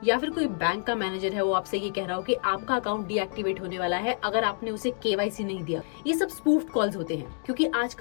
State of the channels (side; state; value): right; silent; 60 dB below the other